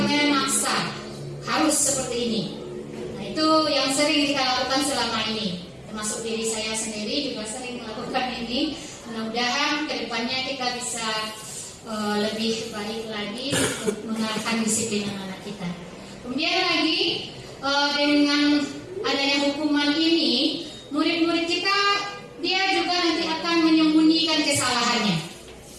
memaksa. Harus seperti ini. Nah, itu yang sering kita lakukan selama ini. Termasuk diri saya sendiri juga sering melakukan ini. Mudah-mudahan kedepannya kita bisa lebih baik lagi untuk mengarahkan disiplin anak-anak kita. Kemudian lagi dengan adanya hukuman ini, murid-murid kita dia juga nanti akan menyembunyikan kesalahannya.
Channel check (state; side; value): identical; both; correlation 1.00